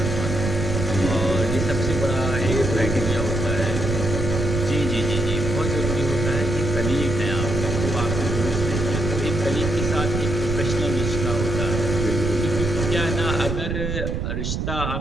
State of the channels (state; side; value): noise; right; rumble, 2 dB below the sound